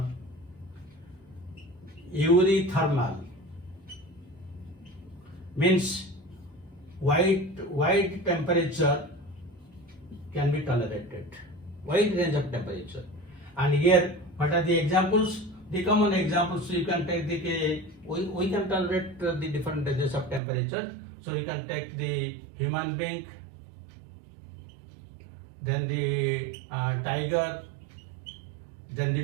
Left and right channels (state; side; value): drops out; left; at 20.4 s